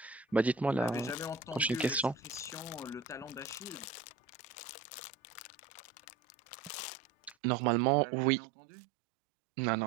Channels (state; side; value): drops out; left; at 7.4 s